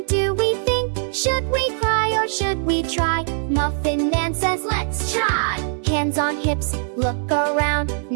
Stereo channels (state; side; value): silent; left; digital silence